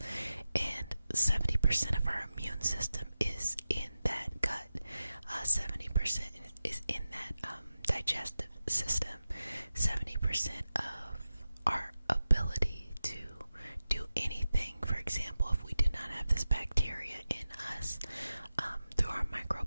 And 70% of our immune system is in that gut. 70% is in that digestive system. 70% of our ability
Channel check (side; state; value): both; inverted; correlation -0.93